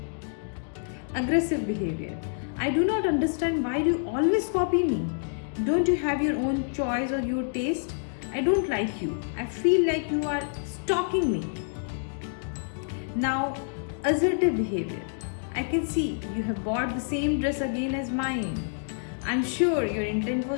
Aggressive behavior. I do not understand why you always copy me. Don't you have your own choice or your taste? I don't like you. I feel like you are stalking me. Now, assertive behavior. I can see you have bought the same dress again as mine. I'm sure your intent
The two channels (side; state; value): right; silent; digital silence